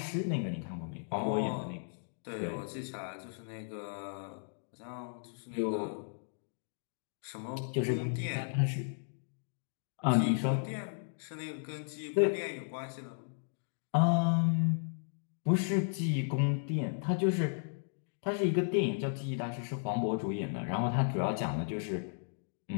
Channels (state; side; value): silent; right; digital silence